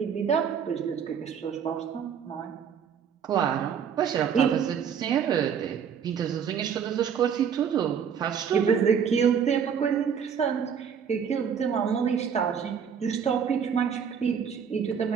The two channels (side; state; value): left; quieter; 7.5 dB